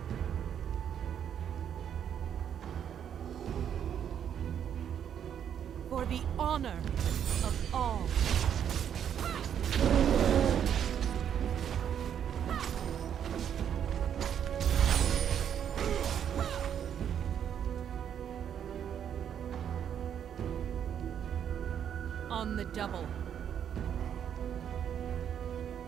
For the honor of all. On the double.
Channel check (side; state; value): left; quieter; 8.9 dB